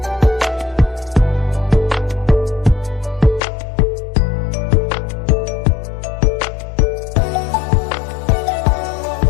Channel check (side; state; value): right; drops out; at 3.4 s